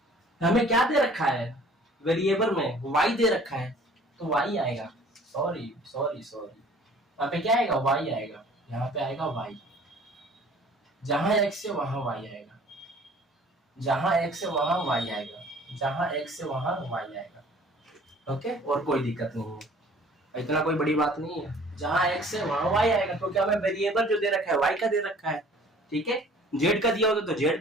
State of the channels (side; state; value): both; normal; correlation 0.51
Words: हमें क्या दे रखा है वेरिएबल में, y दे रखा है, तो y आएगा, सॉरी, यहाँ पे क्या आएगा, y आएगा, यहाँ पे आएगा y, जहां x है वहां y आएगा, जहां x है वहां y आएगा, जहां x है वहां y आएगा, ओके। और कोई दिक्कत नहीं है, इतना कोई बड़ी बात नहीं है, जहां x है वहां y आएगा, क्योंकि हमें वेरिएबल जो दे रखा है y का दे रखा है, ठीक है। z का दिया होता तो z